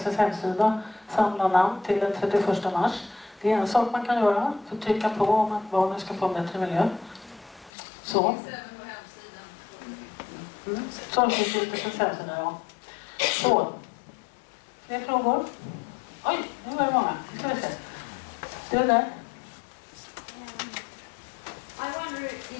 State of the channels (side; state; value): right; drops out; at 7.7 s